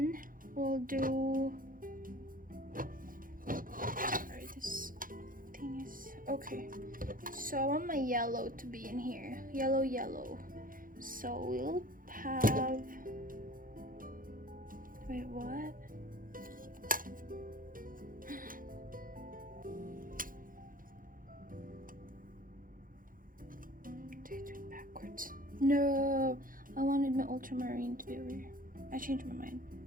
we'll do, sorry, this thing is, okay, so I want my yellow to be in here, yellow. So we'll have, wait, what? Backwards. No, I wanted my ultramarine to be over here. I changed my mind.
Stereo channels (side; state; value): left; late; 0.40 ms